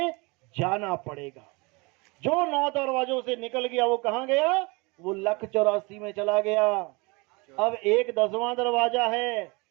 जाना पड़ेगा। जो 9 दरवाजों से निकल गया वो कहां गया? वो 1,84 में चला गया। अब एक 10वां दरवाजा है।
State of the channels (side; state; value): left; quieter; 27.6 dB